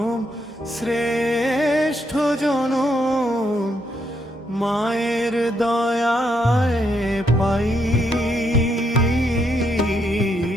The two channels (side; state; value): both; normal; correlation 0.77